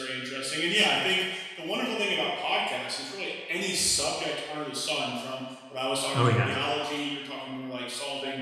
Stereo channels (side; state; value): both; identical; correlation 1.00